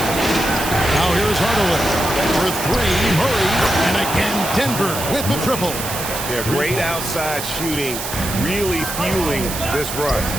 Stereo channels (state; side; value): noise; right; hiss, 6 dB below the sound